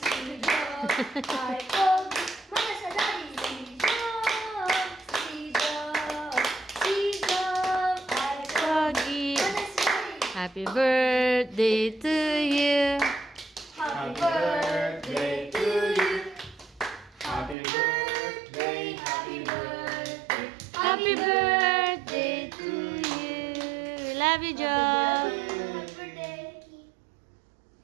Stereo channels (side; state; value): left; drops out; at 17.6 s